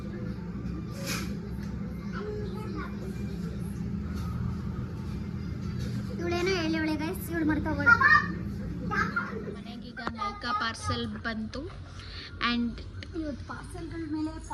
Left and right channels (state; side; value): identical; both; correlation 1.00